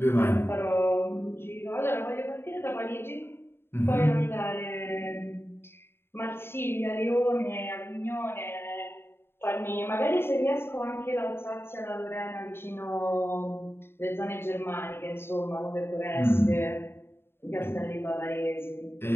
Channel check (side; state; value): right; late; 0.11 ms